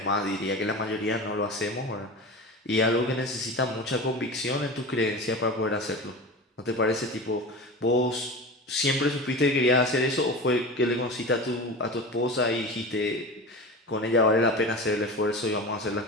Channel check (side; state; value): both; normal; correlation 0.30